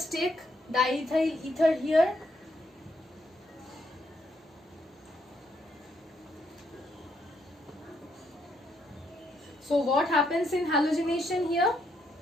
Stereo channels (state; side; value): normal; both; correlation 0.75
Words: take diethyl ether here. So what happens in halogenation here?